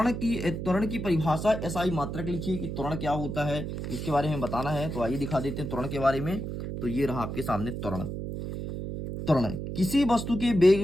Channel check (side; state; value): right; noise; hum, 5 dB below the sound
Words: की परिभाषा एसआई मात्रक लिखिए कि त्वरण क्या होता है, इसके बारे में बताना है। तो आइए दिखा देते हैं त्वरण के बारे में। तो ये रहा आपके सामने त्वरण। त्वरण किसी वस्तु के